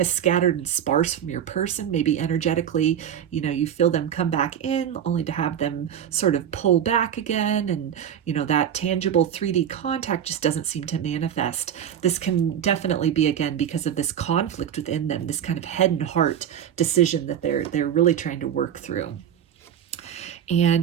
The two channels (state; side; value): quieter; left; 9.4 dB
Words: scattered and sparse from your person, maybe energetically, you feel them come back in only to have them sort of pull back again. And, that tangible 3D contact just doesn't seem to manifest. This can definitely be, again, because of this conflict within them, this kind of head and heart decision that they're really trying to work through.